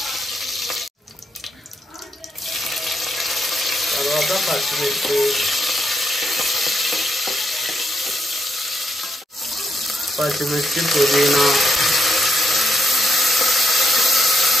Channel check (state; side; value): normal; both; correlation 0.78